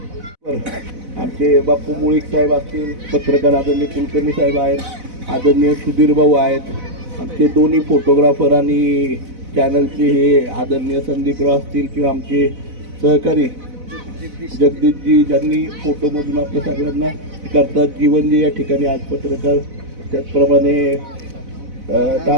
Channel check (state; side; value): late; left; 4.0 ms